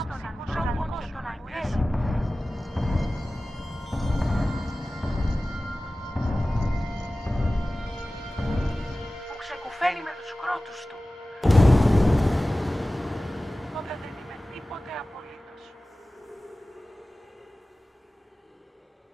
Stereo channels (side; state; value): both; normal; correlation 0.97